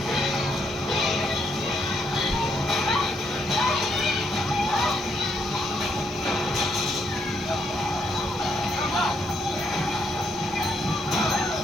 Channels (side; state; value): both; normal; correlation 0.75